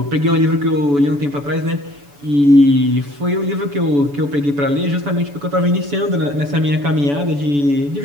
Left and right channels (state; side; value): late; left; 7.0 ms